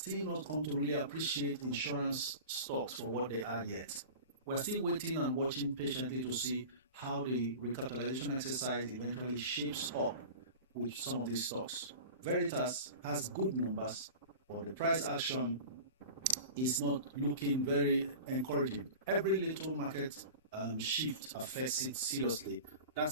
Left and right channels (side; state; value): both; inverted; correlation -0.35